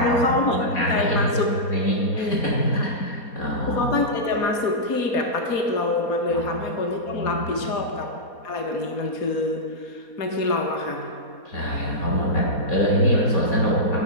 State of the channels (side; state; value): right; late; 4.2 ms